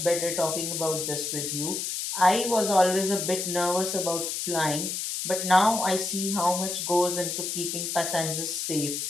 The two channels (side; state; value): left; noise; hiss, 3 dB below the sound